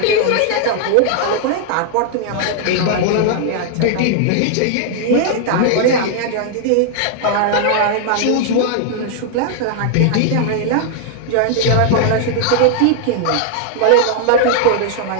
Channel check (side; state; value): both; different; correlation -0.01